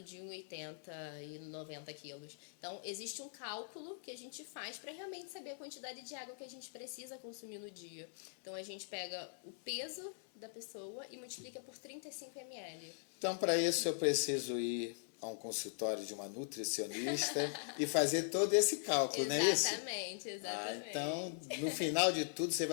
de 1,80 m e 90 quilos. Então, existe um cálculo que a gente faz para realmente saber a quantidade de água que a gente precisa consumir no dia. Então, a gente pega o peso da pessoa e multiplica por 35 ml. Então, para isso, eu preciso ir a um consultório de uma nutricionista e fazer todo esse cálculo, não é isso? Exatamente. Então, no final de tudo, você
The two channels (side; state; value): right; silent; digital silence